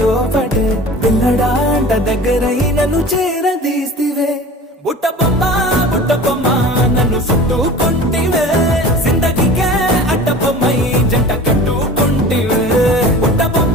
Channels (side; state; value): both; normal; correlation 0.39